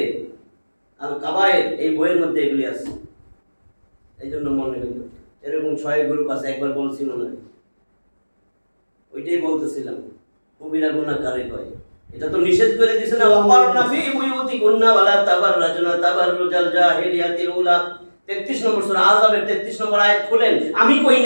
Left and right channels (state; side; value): inverted; both; correlation -1.00